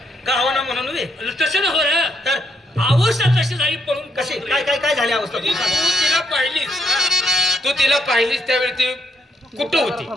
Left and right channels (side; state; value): both; normal; correlation 0.75